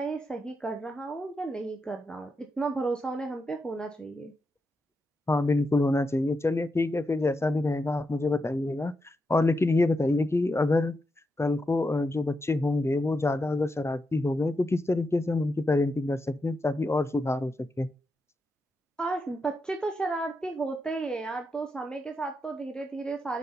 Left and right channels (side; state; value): both; normal; correlation 0.85